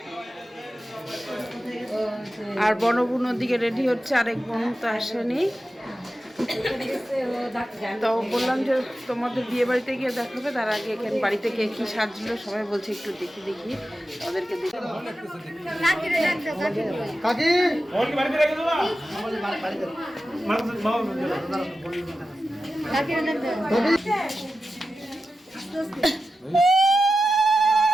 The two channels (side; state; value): both; normal; correlation 0.92